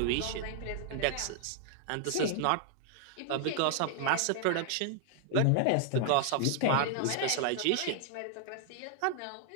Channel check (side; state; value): both; different; correlation 0.00